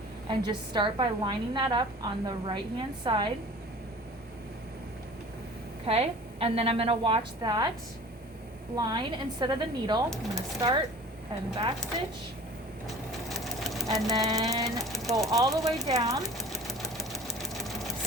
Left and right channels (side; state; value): both; normal; correlation 0.42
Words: and just start by lining that up on the right hand side. Okay, and then I'm gonna watch that line instead of the needle. I'm gonna start and back stitch, and then go all the way down.